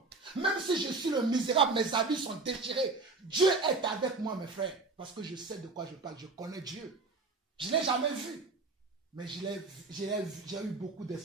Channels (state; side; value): quieter; left; 3.8 dB